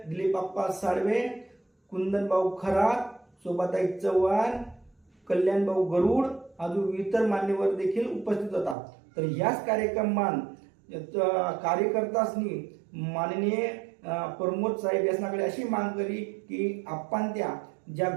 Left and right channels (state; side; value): drops out; left; at 8.8 s